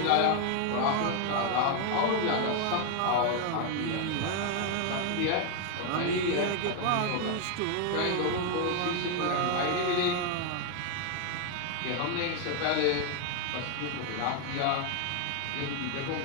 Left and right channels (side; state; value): both; different; correlation 0.01